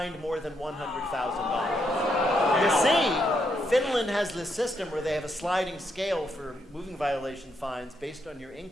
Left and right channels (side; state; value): both; normal; correlation 0.78